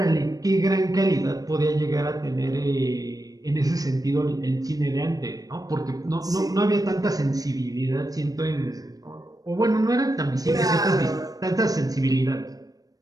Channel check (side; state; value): left; late; 0.18 ms